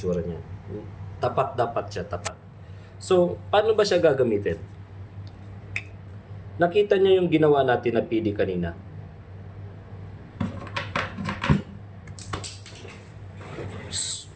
niya. Tapat dapat siya, tapat. So, paano ba siya gagamitin? Nakita niyo yung ginawa natin na PD kanina.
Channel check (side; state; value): both; identical; correlation 1.00